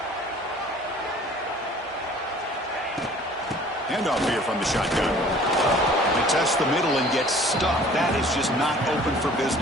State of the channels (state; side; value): normal; both; correlation 0.50